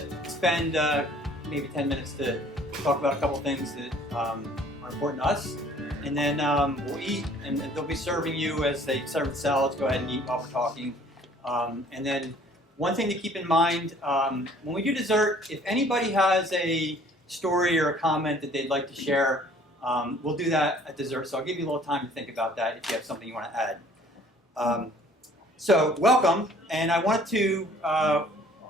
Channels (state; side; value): normal; both; correlation 0.55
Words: spend maybe 10 minutes to talk about a couple things that are important to us. And then we'll eat, and they'll be serving you as they serve the salads. Go ahead and eat while we're talking. And then one thing to keep in mind, when we do dessert, if anybody has a story or a comment that they'd like to share, we'll do that at dessert. So I'll give you a little time to think about that if you have something you want to add. So welcome, and I wanted to